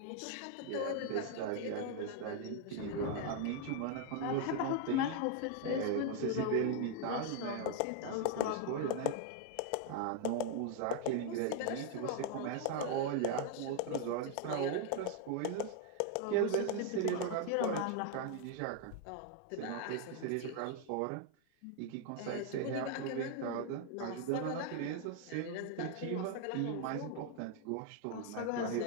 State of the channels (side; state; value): both; different; correlation 0.00